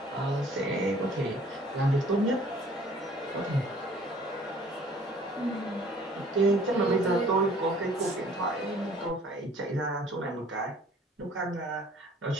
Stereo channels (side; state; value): both; normal; correlation 0.54